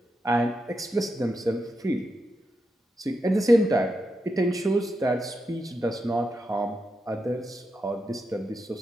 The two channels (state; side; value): normal; both; correlation 0.86